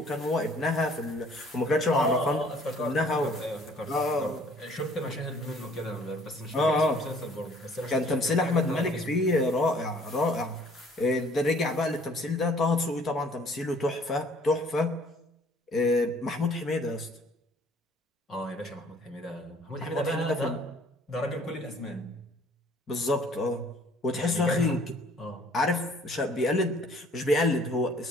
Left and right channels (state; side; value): normal; both; correlation 0.57